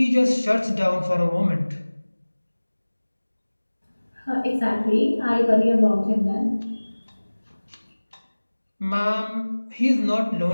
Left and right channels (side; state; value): both; inverted; correlation -1.00